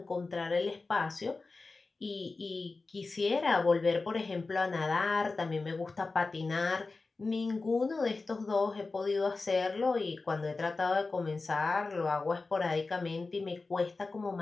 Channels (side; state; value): right; quieter; 3.8 dB